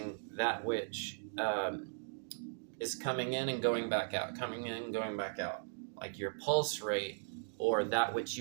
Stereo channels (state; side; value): silent; left; digital silence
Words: that which is coming in and going back out, coming in and going back out. Like your pulse rate or that which